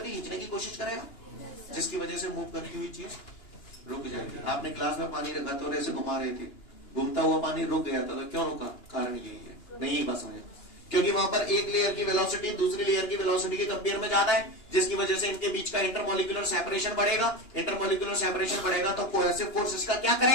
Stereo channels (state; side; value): late; right; 2.9 ms